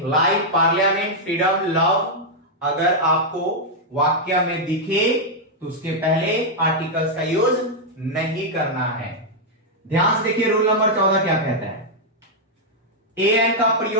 life, parliament, freedom, love, अगर आपको वाक्य में दिखे तो उसके पहले आर्टिकल्स का यूज नहीं करना है। ध्यान से देखिए रूल नंबर 14 क्या कहता है, ए एन का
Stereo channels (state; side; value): normal; both; correlation -0.03